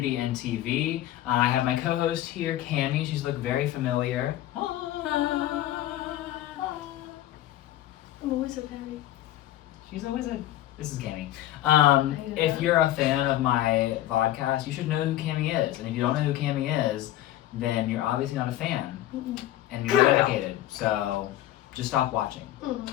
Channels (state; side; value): quieter; right; 13.9 dB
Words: and TV. I have my co-host here, Cammie. She's looked very familiar. I'm always so happy. She's always a... This is Cammie. hate If that. you're a fan of my podcast, you should know who Cammie is. And if you don't know who Cammie is, then you're obviously not a fan. And you're not dedicated. So just stop watching.